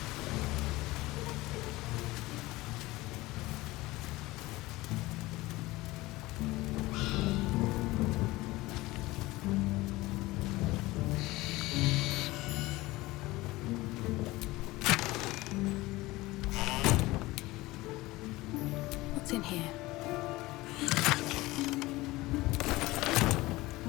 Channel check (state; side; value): quieter; right; 19.7 dB